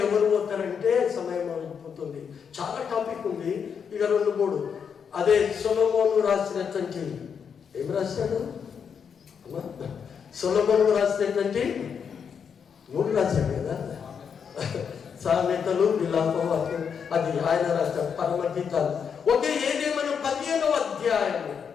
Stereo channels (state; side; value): quieter; right; 6.9 dB